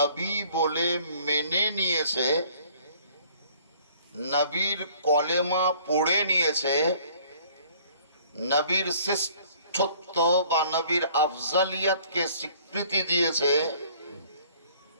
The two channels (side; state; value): both; inverted; correlation -0.55